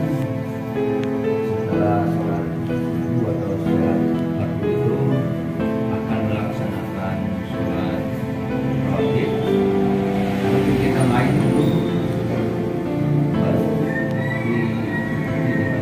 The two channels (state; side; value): identical; both; correlation 1.00